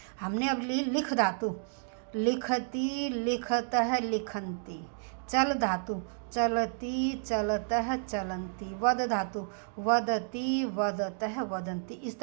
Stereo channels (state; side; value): silent; left; 57 dB below the other